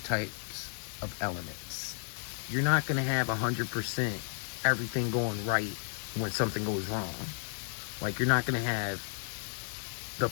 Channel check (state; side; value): silent; right; digital silence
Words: types of elements. You're not going to have 100% everything going right when something goes wrong. Like, you're not going to have the